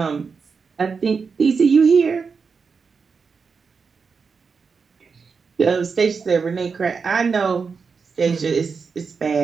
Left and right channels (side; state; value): left; quieter; 5.3 dB